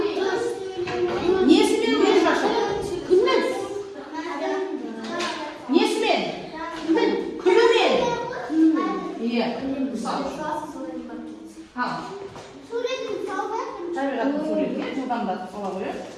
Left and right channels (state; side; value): identical; both; correlation 1.00